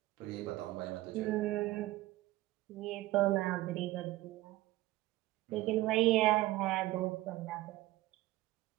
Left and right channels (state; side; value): quieter; left; 17.7 dB